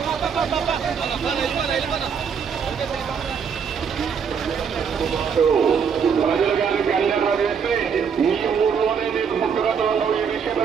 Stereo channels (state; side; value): quieter; left; 6.7 dB